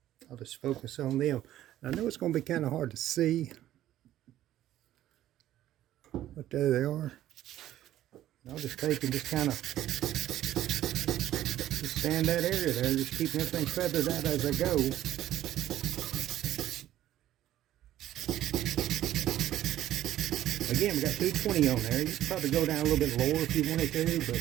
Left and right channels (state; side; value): quieter; left; 13.1 dB